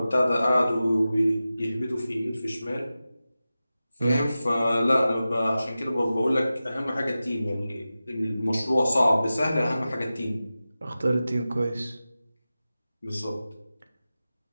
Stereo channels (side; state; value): both; inverted; correlation -0.94